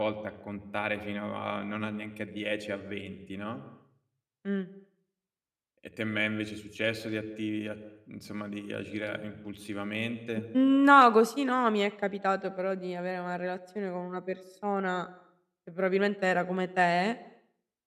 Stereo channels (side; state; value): both; identical; correlation 1.00